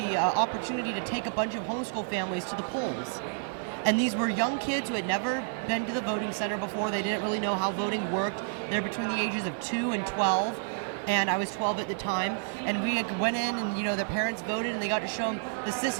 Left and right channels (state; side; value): silent; left; digital silence